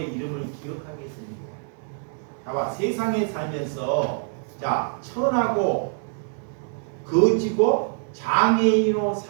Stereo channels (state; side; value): silent; left; 62 dB below the other